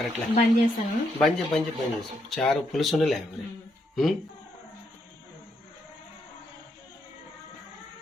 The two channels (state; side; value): normal; both; correlation 0.77